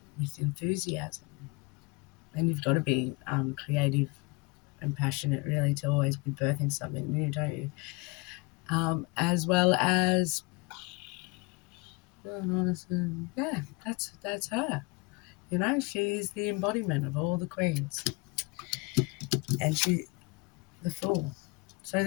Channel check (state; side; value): quieter; right; 27.1 dB